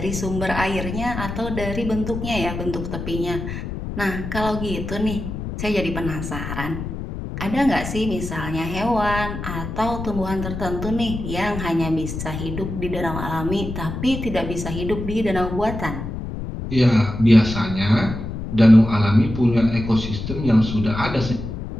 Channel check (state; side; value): noise; left; rumble, 6 dB below the sound